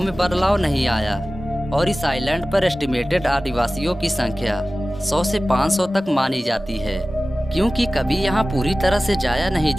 बदलाव नहीं आया और इस आइलैंड पर एस्टिमेटेड आदिवासियों की संख्या 100 से 500 तक मानी जाती है, क्योंकि कभी यहाँ पूरी तरह से जाया नहीं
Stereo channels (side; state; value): both; normal; correlation 0.96